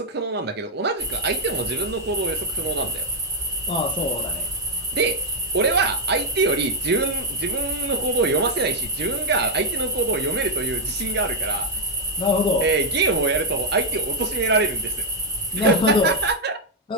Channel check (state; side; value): normal; both; correlation 0.00